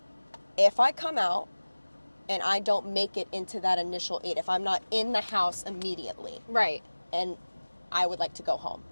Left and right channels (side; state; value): both; inverted; correlation -1.00